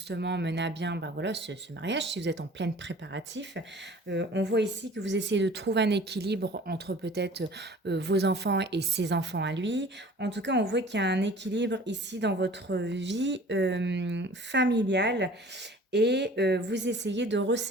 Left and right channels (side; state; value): both; normal; correlation 0.46